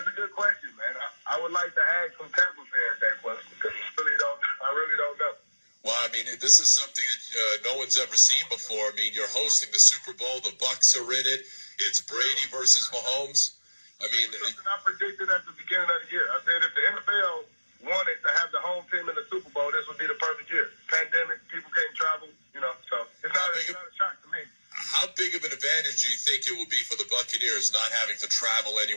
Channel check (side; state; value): both; inverted; correlation -1.00